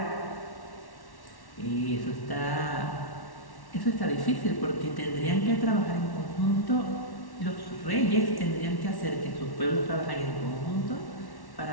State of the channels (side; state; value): right; late; 1.1 ms